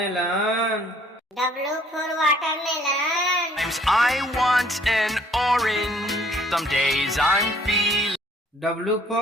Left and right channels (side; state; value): both; normal; correlation 0.60